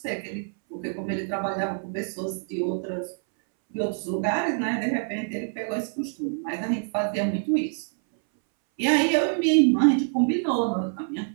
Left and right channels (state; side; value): silent; left; 61 dB below the other